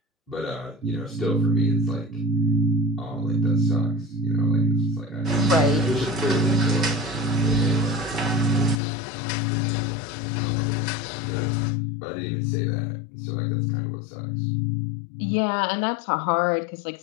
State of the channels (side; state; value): right; drops out; at 8.8 s